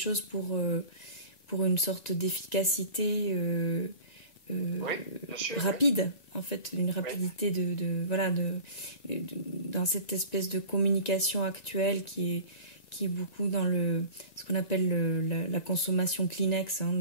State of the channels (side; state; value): right; late; 2.0 ms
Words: pour une sorte d'efficacité rapide, en fait, une rapidité dans cette espèce de communication actuelle qui est beaucoup dans ce qu'on appelle la consommation Kleenex,